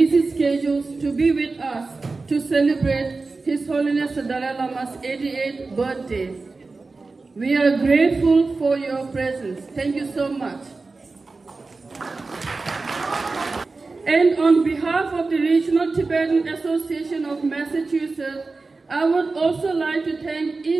schedules to be with us to celebrate His Holiness the Dalai Lama's 88th birthday. We are grateful for your presence. Thank you so much. And on behalf of the Regional Tibetan Association of Massachusetts, I would also like to thank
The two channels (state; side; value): quieter; left; 3.8 dB